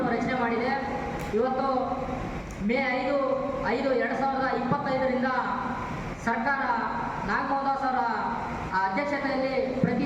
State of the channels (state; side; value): identical; both; correlation 1.00